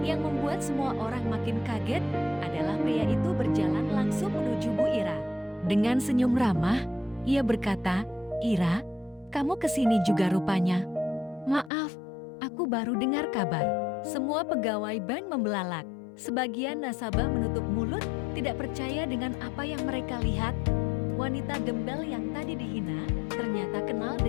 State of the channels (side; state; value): right; drops out; at 11.7 s